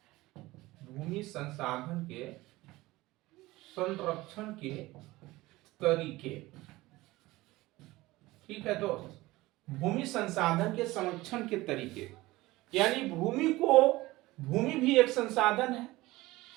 भूमि संसाधन के संरक्षण के तरीके। ठीक है दोस्त, भूमि संसाधन के संरक्षण के तरीके यानी भूमि भी एक संसाधन है,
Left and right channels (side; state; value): left; quieter; 19.2 dB